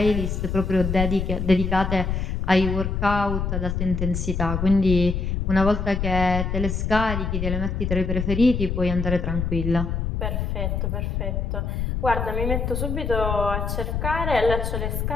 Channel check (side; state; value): left; noise; rumble, 1 dB below the sound